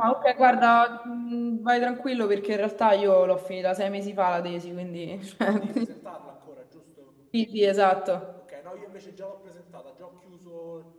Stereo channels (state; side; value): identical; both; correlation 1.00